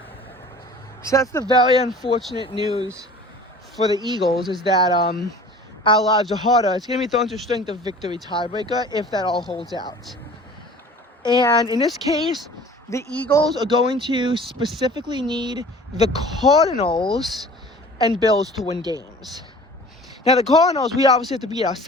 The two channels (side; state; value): both; normal; correlation 0.44